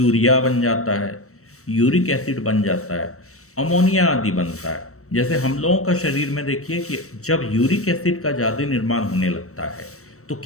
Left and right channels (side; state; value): right; late; 0.64 ms